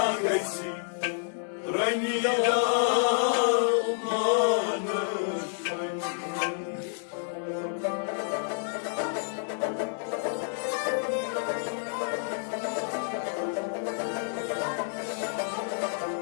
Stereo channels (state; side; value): silent; right; 58 dB below the other